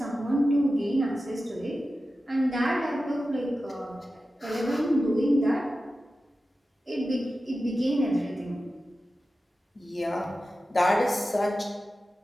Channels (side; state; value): both; normal; correlation 0.93